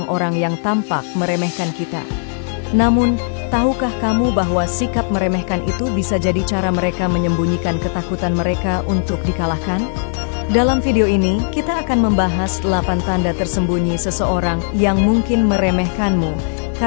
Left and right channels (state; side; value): silent; right; 60 dB below the other